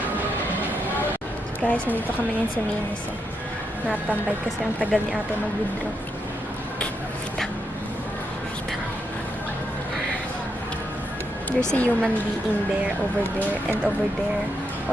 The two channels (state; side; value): normal; both; correlation 0.81